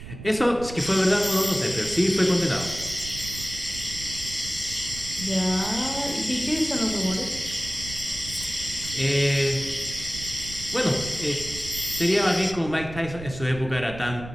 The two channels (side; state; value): right; noise; rumble, 12 dB below the sound